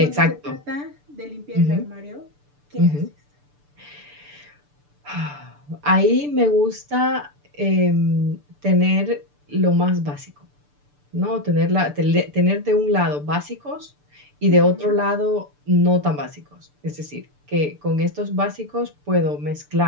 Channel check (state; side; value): late; left; 6.8 ms